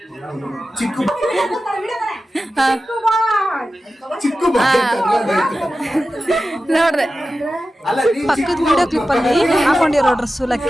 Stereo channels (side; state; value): both; normal; correlation 0.93